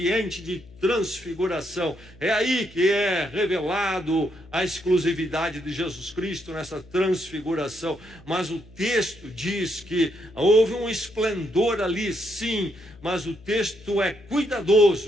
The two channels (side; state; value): left; noise; hum, 23 dB below the sound